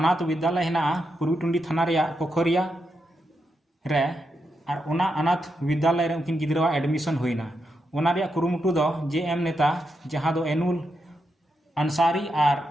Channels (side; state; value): both; normal; correlation 0.84